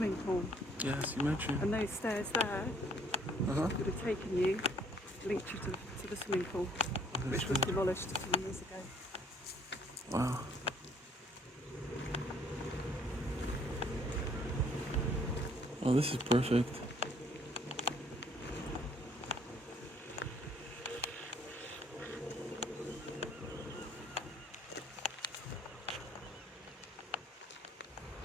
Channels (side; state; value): both; normal; correlation 0.61